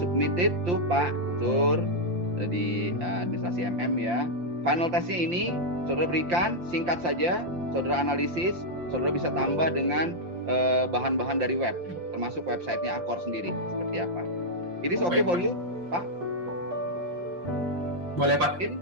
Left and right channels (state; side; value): late; left; 5.7 ms